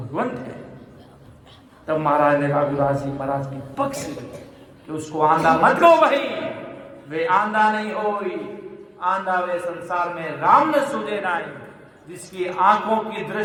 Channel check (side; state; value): both; identical; correlation 1.00